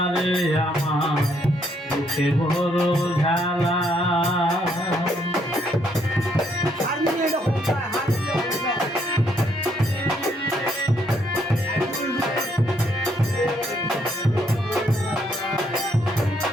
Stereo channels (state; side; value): normal; both; correlation 0.71